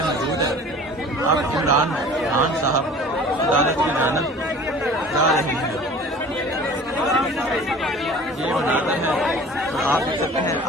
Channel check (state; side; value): normal; both; correlation 0.44